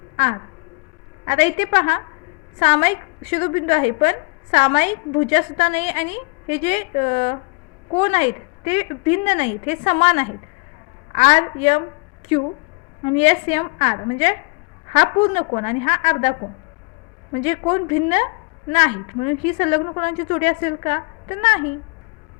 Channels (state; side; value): quieter; right; 31.3 dB